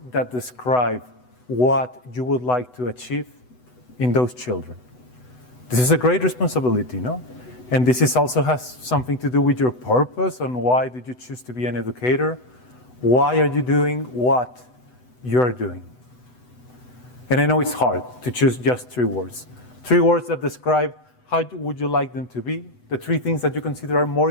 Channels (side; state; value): right; late; 8.0 ms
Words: that describe what you would like to achieve in those children. This is a great responsibility, no? And this is also has something to do with your purpose on why did you choose to be an educator? Why are you doing what you're doing? And I know it's hard to choose just 3 words. 3 words that describe how would you like them to be, the 3 things that you consider are more